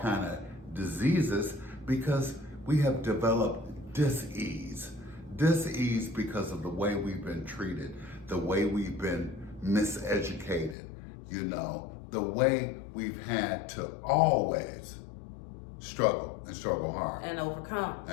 kind of diseases, because we have developed dis-ease. Dis-ease because of the way we've been treated, the way we've been miseducated, you know, the way we've had to always struggle and struggle hard. And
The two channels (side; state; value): right; drops out; at 10.8 s